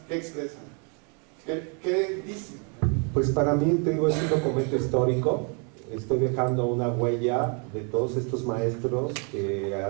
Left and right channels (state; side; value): quieter; left; 37.2 dB